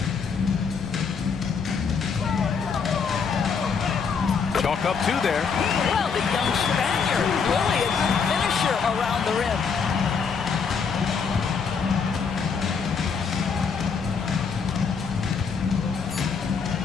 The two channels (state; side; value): quieter; right; 5.8 dB